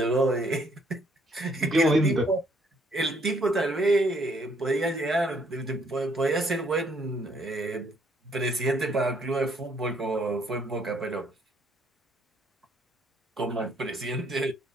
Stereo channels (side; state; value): both; normal; correlation 0.67